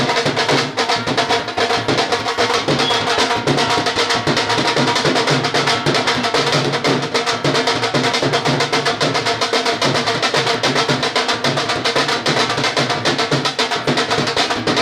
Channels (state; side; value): identical; both; correlation 1.00